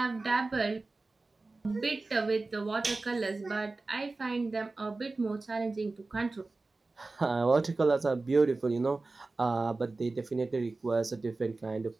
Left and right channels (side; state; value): left; quieter; 3.4 dB